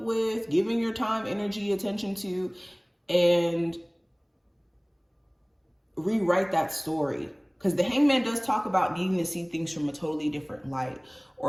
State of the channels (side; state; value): both; identical; correlation 1.00